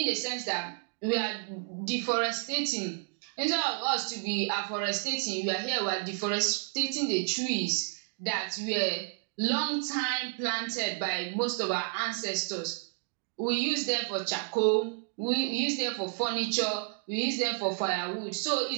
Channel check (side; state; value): left; silent; 55 dB below the other